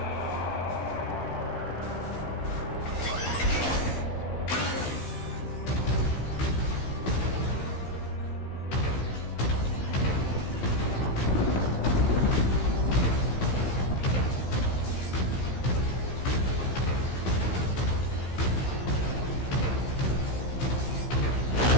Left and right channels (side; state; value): right; late; 15 ms